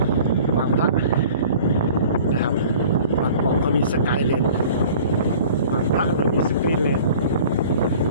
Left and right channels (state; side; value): inverted; both; correlation -0.46